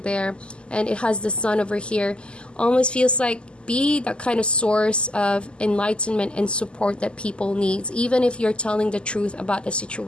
and it has the sun over here. Almost feels like be that kind of source of enlightenment and support that people need, even if you're telling the truth about the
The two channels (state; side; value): late; right; 0.051 ms